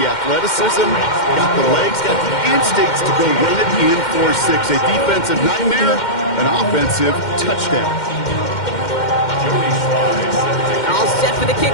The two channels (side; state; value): right; late; 2.1 ms